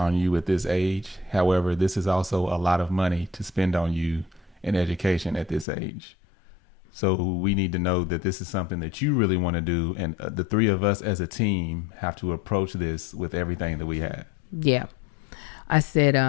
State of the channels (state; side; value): drops out; right; at 5.7 s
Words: you at this age. However, this is also a lot of money to spend on you in education at this age. So we need to know that this is something that you really want to do. And the three of us as a team have to approach this with everything that we have. Yeah. I